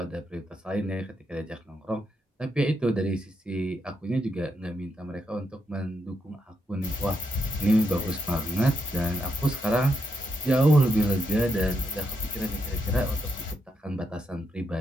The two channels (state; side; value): normal; both; correlation 0.79